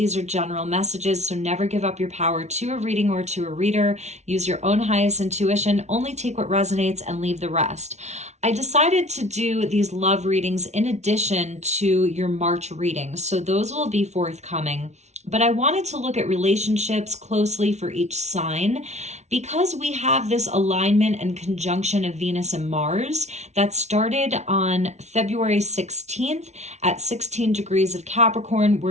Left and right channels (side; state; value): left; late; 0.32 ms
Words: are general messages, so never give up your power to a reading or to a reader. Use your own highest intuition. Only take what resonates and leave the rest. I decided to do these love readings in addition to your March readings, so those will be forthcoming. But I wanted to look at relationships closely for each sign because we have this alignment and conjunction of Venus and Mars that started on February 16th at 16 degrees of Capricorn,